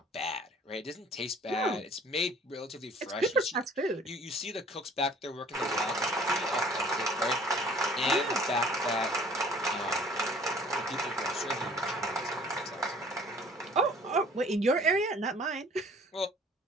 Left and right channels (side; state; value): both; normal; correlation 0.53